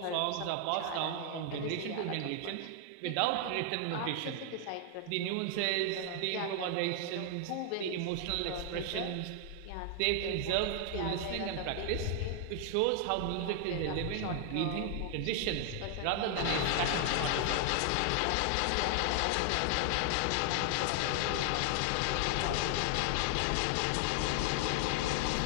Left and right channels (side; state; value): both; different; correlation 0.00